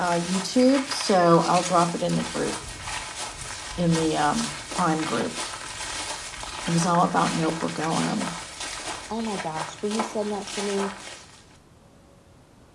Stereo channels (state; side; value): identical; both; correlation 1.00